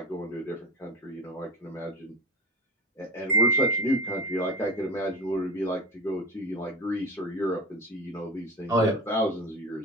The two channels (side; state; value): both; normal; correlation 0.28